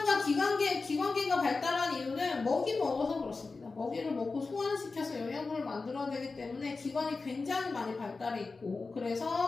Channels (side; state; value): right; quieter; 4.0 dB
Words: 기관계가 발달한 이유는 먹이 먹어서 그렇습니다. 먹이를 먹고 소화시켜서 영양분을 만들어야 되기 때문에 기관이 굉장히 많이 발달해 있고